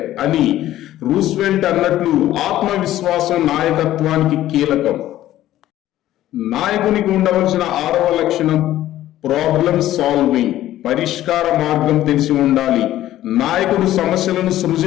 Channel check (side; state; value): right; quieter; 13.8 dB